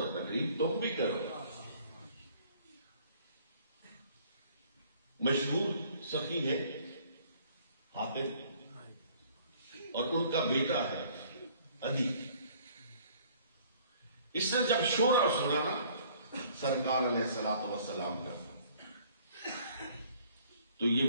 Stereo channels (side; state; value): both; inverted; correlation -0.57